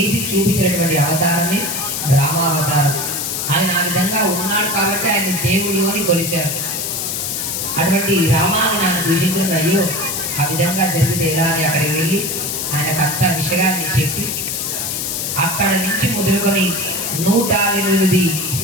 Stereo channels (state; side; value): noise; left; hiss, 2 dB below the sound